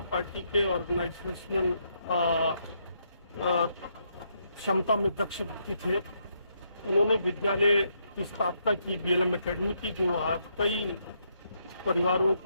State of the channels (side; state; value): both; inverted; correlation -0.76